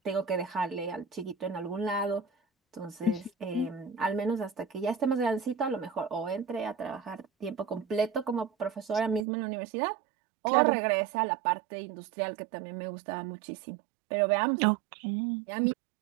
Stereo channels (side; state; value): left; drops out; at 9.2 s